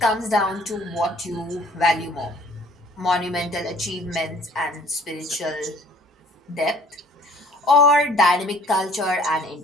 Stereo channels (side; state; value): both; normal; correlation 0.54